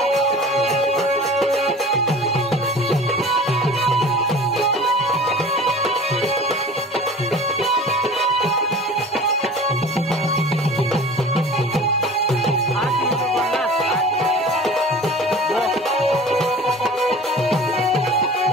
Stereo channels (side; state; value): both; normal; correlation 0.41